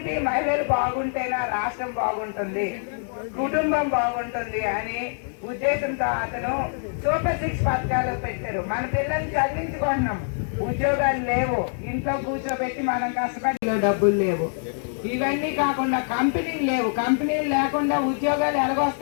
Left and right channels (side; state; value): right; silent; digital silence